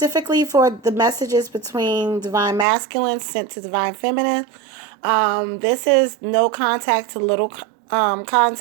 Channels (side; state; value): left; drops out; at 2.7 s